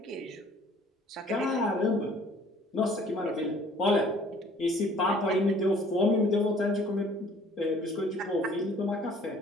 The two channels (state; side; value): normal; both; correlation 0.55